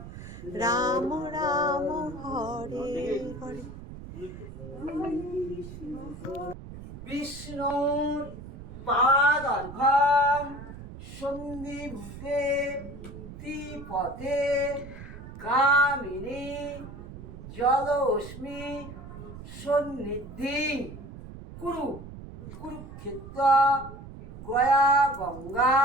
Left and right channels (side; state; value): right; noise; rumble, 13 dB below the sound